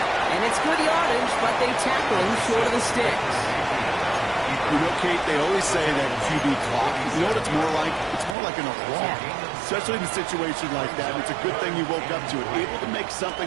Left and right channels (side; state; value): left; drops out; at 8.3 s